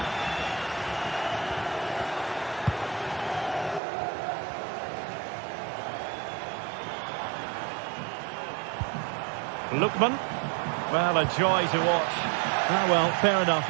Lookman. Well, a joy to watch. Ah, well, fair enough.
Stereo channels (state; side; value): drops out; left; at 3.8 s